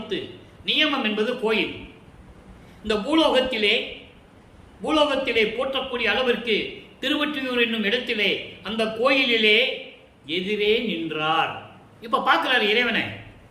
நியமம் என்பது கோயில். இந்த பூலோகத்திலே போற்றக்கூடிய அளவிற்கு திருவொற்றியூர் என்னும் இடத்திலே அந்த கோயிலிலே எதிரே நின்றார். இப்ப பார்க்கிறார் இறைவனை.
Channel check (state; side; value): identical; both; correlation 1.00